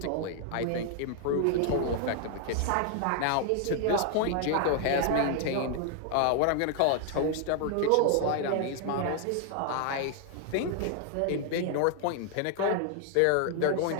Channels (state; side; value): different; both; correlation 0.00